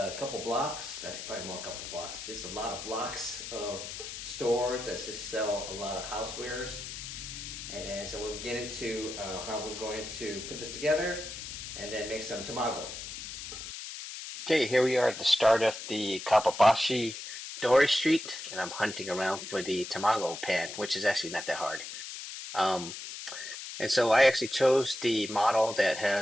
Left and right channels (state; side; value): noise; left; hiss, 9 dB below the sound